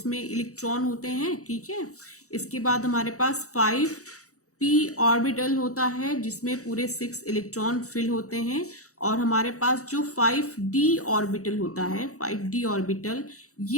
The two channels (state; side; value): late; right; 0.65 ms